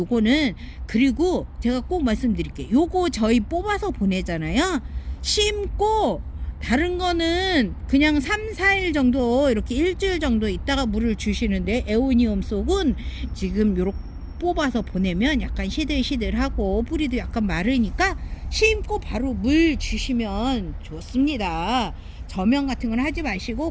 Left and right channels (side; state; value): both; identical; correlation 1.00